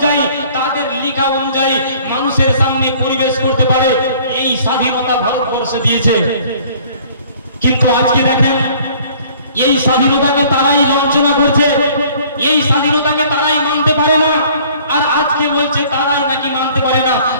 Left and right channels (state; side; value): inverted; both; correlation -0.54